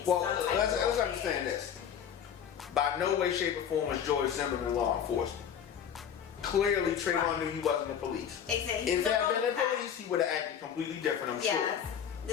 Well, let's understand this. By no way, shape, or form was George Zimmerman law enforcement. Clearly, Trayvon knew he wasn't the police. Exactly. If there had been the police, he would have acted completely different, I'm sure.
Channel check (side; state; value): right; quieter; 8.4 dB